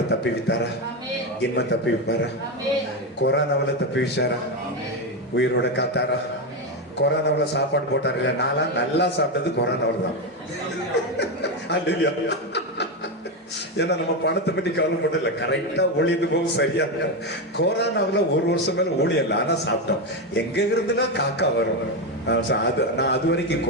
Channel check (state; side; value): normal; both; correlation 0.11